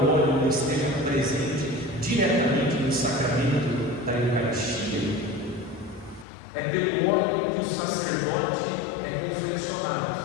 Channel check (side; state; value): right; drops out; at 6.2 s